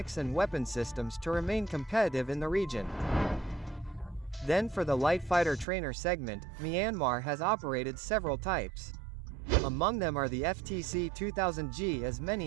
and weapon systems to remain competitive in the region. Then for the light fighter trainer segment, Myanmar has operated several types. Among them are the FTC-2000G, as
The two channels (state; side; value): drops out; left; at 5.7 s